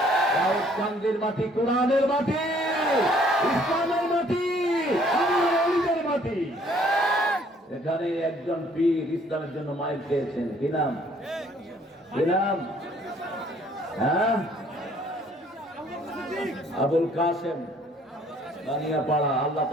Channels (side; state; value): both; normal; correlation 0.60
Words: রাউতকান্দির মাটি কোরআনের মাটি, ইসলামের মাটি, আল্লাহর মাটি। এখানে একজন পীর ইসলামের জন্য মাইর খেয়েছেন। কি নাম? কি নাম? হ্যাঁ, আবুল কাসেম বানিয়াপাড়া। আল্লাহ